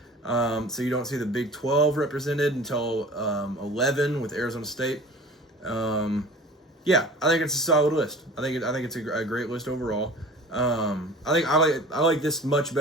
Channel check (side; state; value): both; normal; correlation 0.43